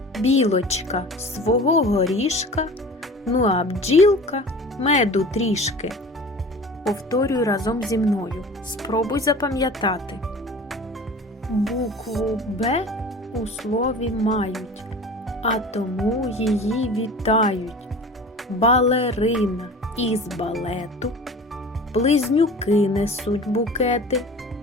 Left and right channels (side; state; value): both; normal; correlation 0.39